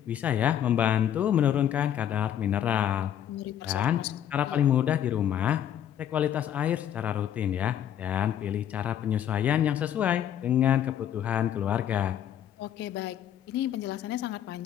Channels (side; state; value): right; quieter; 10.1 dB